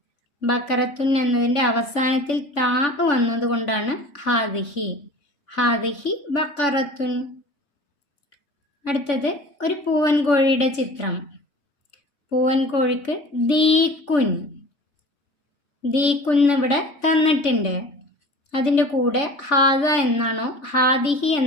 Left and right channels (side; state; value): right; late; 3.5 ms